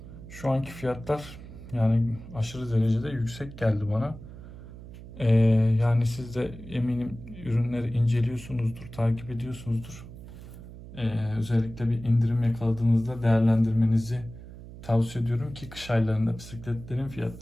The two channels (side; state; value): right; noise; hum, 15 dB below the sound